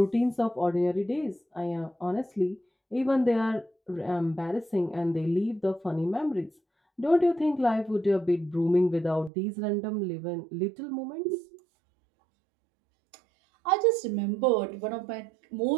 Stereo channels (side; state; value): left; drops out; at 9.3 s